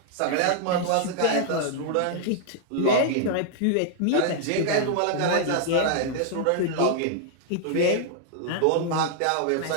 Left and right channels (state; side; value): different; both; correlation -0.01